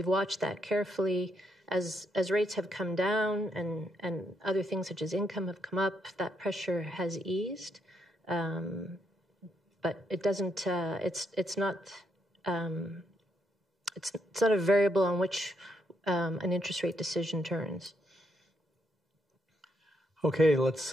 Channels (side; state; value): both; normal; correlation 0.77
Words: watched that carefully. As rates have come down and other things such as income have come up, that pressure has eased. But it doesn't. It's not a variable on which an interest rate decision turns. Okay, let's